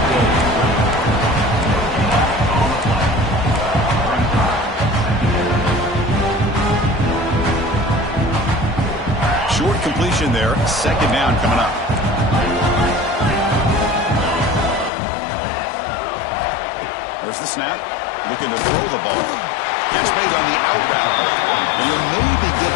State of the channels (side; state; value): right; drops out; at 14.9 s